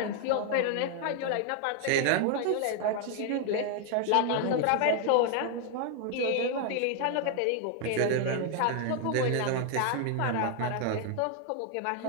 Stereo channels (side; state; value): both; different; correlation 0.01